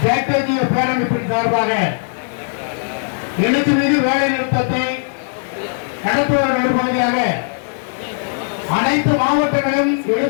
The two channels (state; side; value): silent; right; digital silence